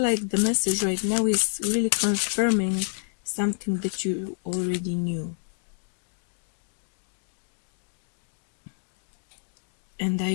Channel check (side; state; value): right; silent; digital silence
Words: the message right now is really confirming something that you already knew. And